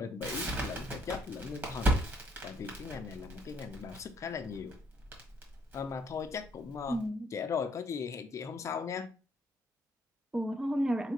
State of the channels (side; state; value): both; normal; correlation 0.68